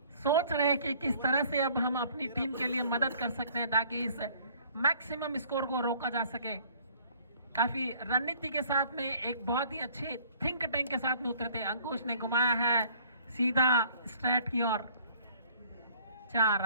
सोच रहे हैं कि किस तरह से अब हम अपनी टीम के लिए मदद कर सकते हैं ताकि इस मैक्सिमम स्कोर को रोका जा सके। काफी रणनीति के साथ में एक बहुत ही अच्छे थिंक टैंक के साथ में उतरे थे। अंकुश ने घुमाया है सीधा स्ट्रेट की ओर, 4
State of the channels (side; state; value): both; inverted; correlation -0.56